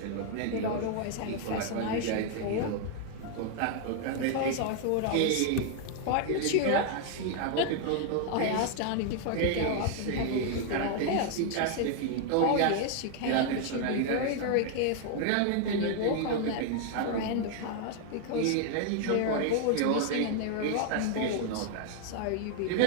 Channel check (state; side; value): different; both; correlation 0.00